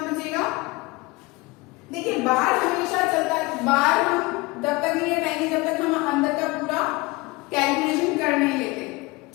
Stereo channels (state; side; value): quieter; right; 23.5 dB